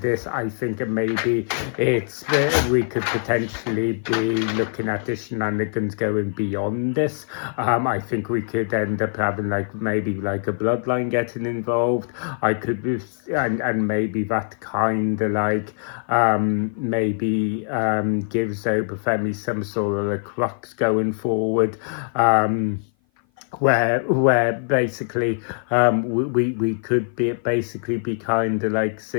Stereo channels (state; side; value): silent; right; 56 dB below the other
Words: this. I think maybe we could potentially be looking at the shenanigans going beyond this. I think we could end up having like maybe like a bloodline getting involved. I could be, and maybe that kind of like maybe gives Obafemi some sort of a crux going forward. Where basically we could be kind of like